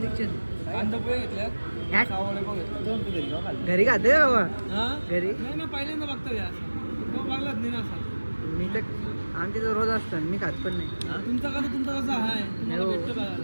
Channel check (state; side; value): inverted; both; correlation -1.00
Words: कांदा पोहे घेतल्या ह्याट? सावळे पण घेतले. दोन तू घरी खाल्ले. घरी खाते का बाबा? हा घरी नाही ना पहिल्यांदा बघतो यार बघलाच नाही ना असा. मी तर आमच्या तर रोज असतं मी खात पण नाही. तुमचा कसा आहे तुम्हाला हो. भेटतो